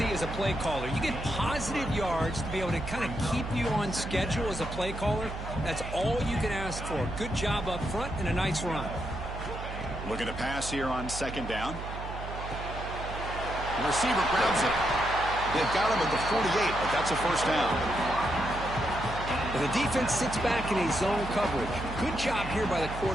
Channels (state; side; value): noise; right; hum, 8 dB below the sound